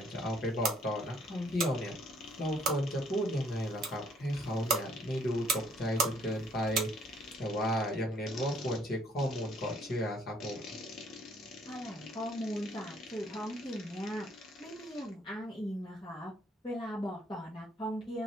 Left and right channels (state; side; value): normal; both; correlation 0.63